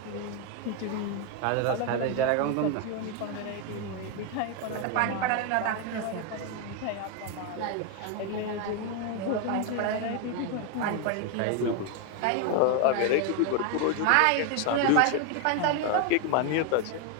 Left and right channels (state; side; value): different; both; correlation 0.01